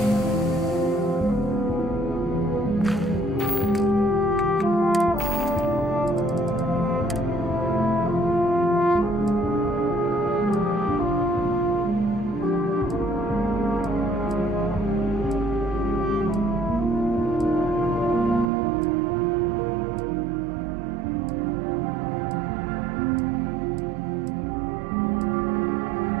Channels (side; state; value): left; drops out; at 18.5 s